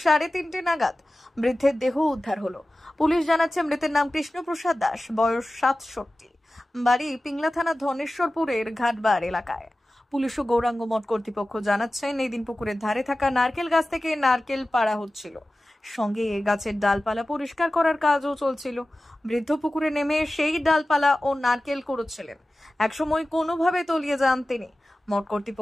3:30 নাগাদ বৃদ্ধের দেহ উদ্ধার হলো। পুলিশ জানাচ্ছে মৃতের নাম কৃষ্ণপ্রসাদ দাস, বয়স 67, বাড়ি পিংলা থানা ধনেশ্বরপুরের ঘাটবার এলাকায়। পুলিশ ও গৌরাঙ্গ মঠ কর্তৃপক্ষ জানাচ্ছেন, এই দিন পুকুরের ধারে থাকা নারকেল গাছ থেকে নারকেল পাড়া হচ্ছিল, সঙ্গে গাছের ডালপালা পরিষ্কার করার কাজও চলছিল। বৃদ্ধ পুকুরে নেমে সেই ডালপালা ও নারকেল কুড়োচ্ছিলেন। একসময় কোনোভাবে তলিয়ে যান তিনি। মঠ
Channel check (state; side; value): normal; both; correlation 0.96